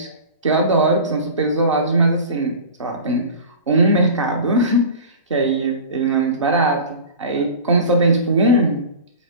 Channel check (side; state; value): both; inverted; correlation -0.35